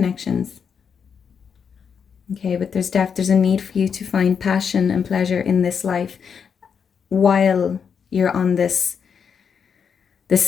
Okay, but there's a need for you to find passion and pleasure in this life while you're on this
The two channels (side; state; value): right; quieter; 6.8 dB